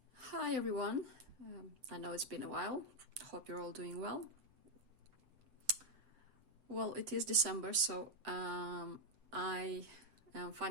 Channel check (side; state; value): left; late; 7.8 ms